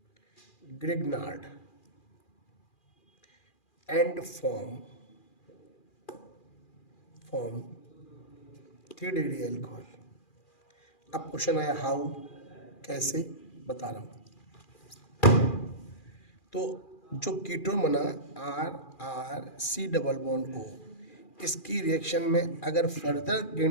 Grignard and form 3 degree alcohol. अब क्वेश्चन आया हाउ, कैसे? बता रहा हूं। तो जो कीटोन बना RC डबल बॉन्ड O, इसकी रिएक्शन में अगर फर्दर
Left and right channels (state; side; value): late; right; 2.4 ms